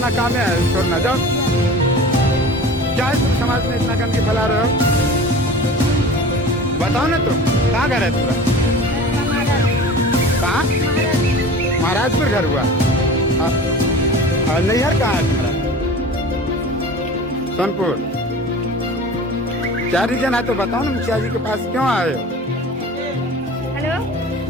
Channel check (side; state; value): both; normal; correlation 0.38